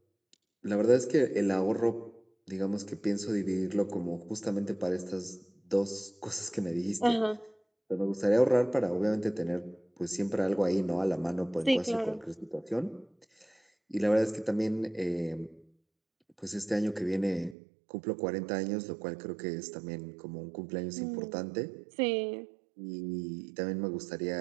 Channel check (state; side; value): drops out; left; at 17.6 s